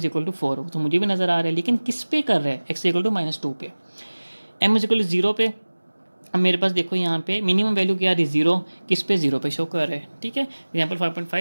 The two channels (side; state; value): both; inverted; correlation -1.00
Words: 4, तो मुझे भी नजर आ रहा है, लेकिन किस पे कर रहे हैं, x = -2 पे, m = 0 पे। अब मेरे पास देखो यहाँ पे मिनिमम वैल्यू क्या आ रही है, 0, किस पे 0 पे शो कर रहे हैं, ठीक है। एग्जाम्पल